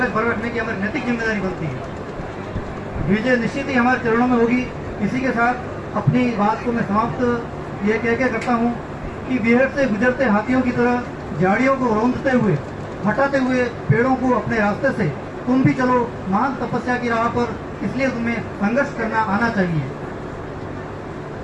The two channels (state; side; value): identical; both; correlation 1.00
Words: भर रखने की हमारी नैतिक जिम्मेदारी बनती है। विजय निश्चित ही हमारे चरणों में होगी। इसी के साथ अपनी बात को मैं समाप्त ये कह के करता हूँ कि बिहार से गुजरते हाथियों की तरह झाड़ियों को रौंदते हुए, हटाते हुए पेड़ों को अपने रास्ते से तुम भी चलो महान तपस्या की राह पर। इसलिए तुम्हें संघर्ष करना आना चाहिए।